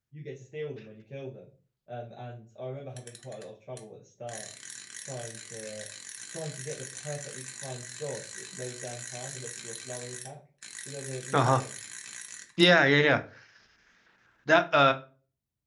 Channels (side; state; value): both; identical; correlation 1.00